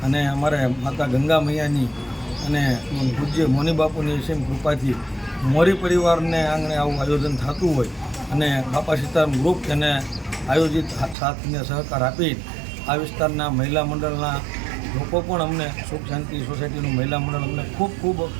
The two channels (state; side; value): drops out; left; at 11.2 s